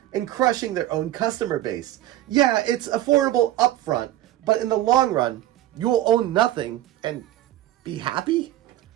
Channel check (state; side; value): quieter; left; 14.0 dB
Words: in crushing their own customer base. Yeah, it's affordable upfront, but in the long run, you'll own nothing and be happy?